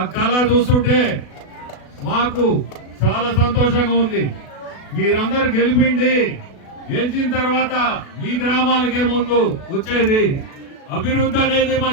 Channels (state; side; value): late; right; 36 ms